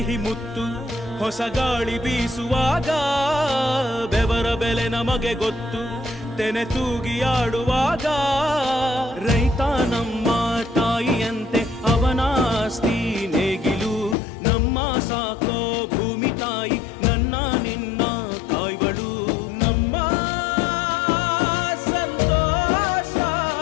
ಮುತ್ತು ಹೊಸ ಗಾಳಿ ಬೀಸುವಾಗ ಬೆವರ ಬೆಲೆ ನಮಗೆ ಗೊತ್ತು ತೆನೆ ತೂಗಿ ಆಡುವಾಗ ರೈತ ನಮ್ಮ ತಾಯಿಯಂತೆ ಅವನಾಸ್ತಿ ನೇಗಿಲು ನಮ್ಮ ಸಾಕೋ ಭೂಮಿ ತಾಯಿ ನನ್ನ ನಿನ್ನ ಕಾಯ್ವಳು ನಮ್ಮ ಸಂತೋಷ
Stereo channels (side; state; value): right; drops out; at 14.2 s